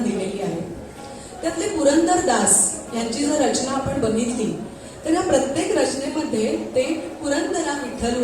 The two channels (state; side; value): identical; both; correlation 1.00